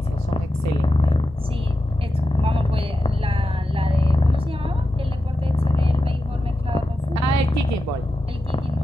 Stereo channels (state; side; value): normal; both; correlation 0.90